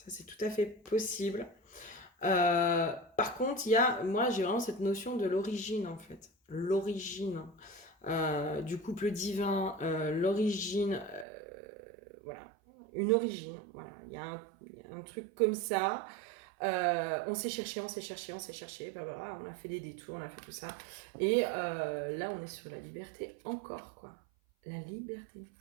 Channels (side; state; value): left; drops out; at 11.2 s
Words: c'est tout à fait possible. Par contre, moi j'ai vraiment cette notion de l'origine en fait. L'origine du couple divin, l'origine, voilà, une origine. Voilà. Il y a un truc comme ça. On s'est cherché, bah, on a fait des détours, on a fait tout ça. Et là, on est sur la liberté encore, quoi. La liberté.